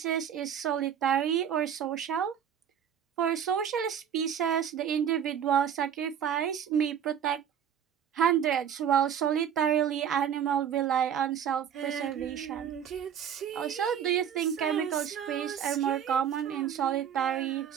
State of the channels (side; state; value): left; quieter; 8.7 dB